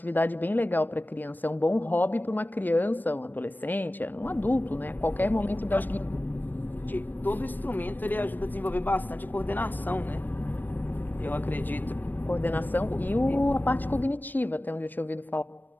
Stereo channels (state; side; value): late; right; 0.090 ms